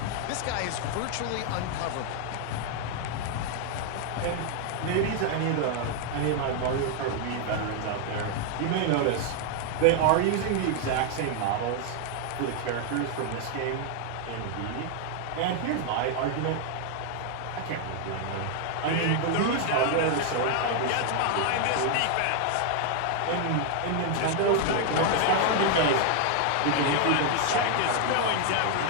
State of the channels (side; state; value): both; different; correlation 0.00